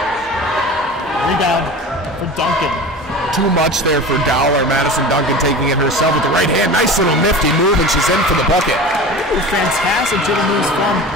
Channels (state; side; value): normal; both; correlation 0.34